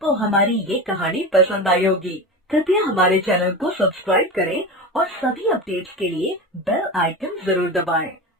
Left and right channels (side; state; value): both; normal; correlation 0.26